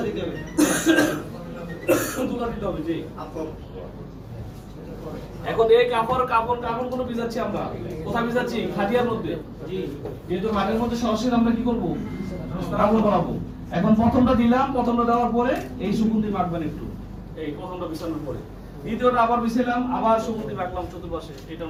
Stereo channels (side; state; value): both; identical; correlation 1.00